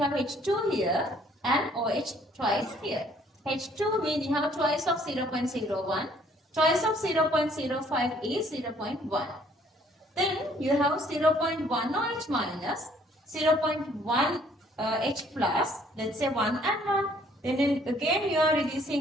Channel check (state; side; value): normal; both; correlation 0.61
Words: have H2 here and OH twice here. H2 means you have twice of 0.01. Twice of 0.05 is 0.1. Then you have 0.1 OH minus, 0.1 H plus, let's say 1 and 1. Then again you are